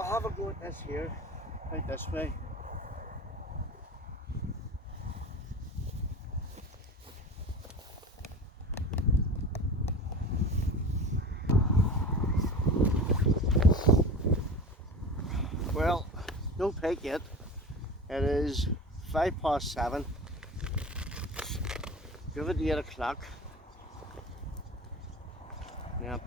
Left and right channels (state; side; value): normal; both; correlation 0.34